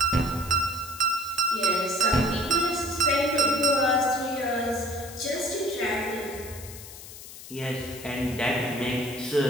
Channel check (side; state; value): left; noise; hiss, 14 dB below the sound